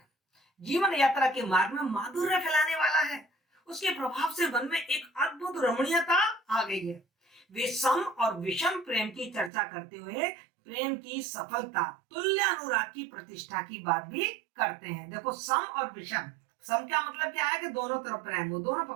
जीवन यात्रा के मार्ग में माधुर्य फैलाने वाला है। उसके प्रभाव से मन में एक अद्भुत रमणीयता आ गई है। वे सम और विषम प्रेम की चर्चा करते हुए प्रेम की सफलता, तुल्य अनुराग की प्रतिष्ठा की बात भी करते हैं। देखो, सम और विषम, सम का मतलब क्या है कि दोनों तरफ प्रेम हो, दोनों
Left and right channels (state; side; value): drops out; left; at 9.5 s